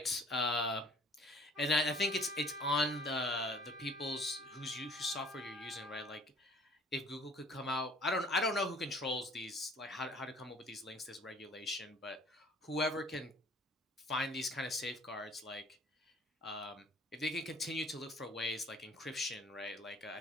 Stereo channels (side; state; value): both; normal; correlation 0.54